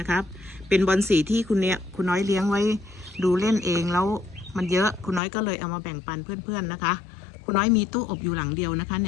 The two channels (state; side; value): drops out; right; at 5.2 s